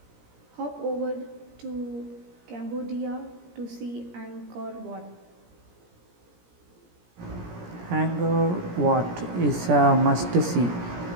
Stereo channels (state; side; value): late; left; 17 ms